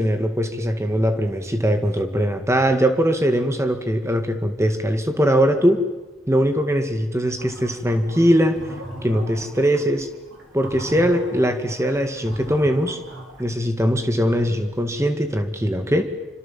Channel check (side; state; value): both; normal; correlation 0.82